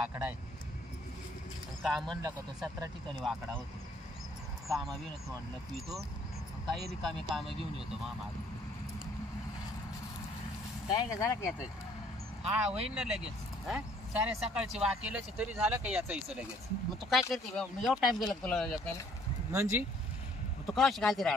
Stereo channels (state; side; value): normal; both; correlation 0.61